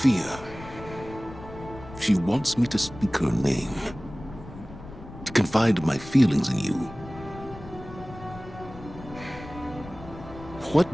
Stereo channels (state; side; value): noise; left; rumble, 15 dB below the sound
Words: She wants me to speak her name. To confide my feelings in you. What